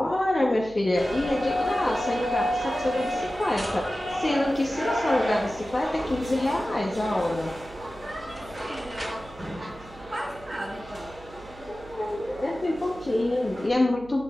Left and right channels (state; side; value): noise; right; hum, 20 dB below the sound